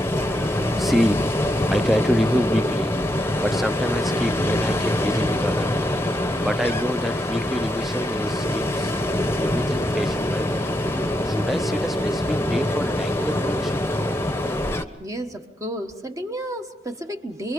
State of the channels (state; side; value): normal; both; correlation 0.81